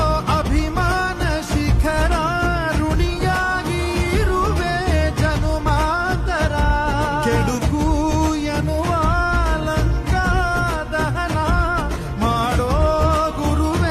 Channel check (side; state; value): both; identical; correlation 1.00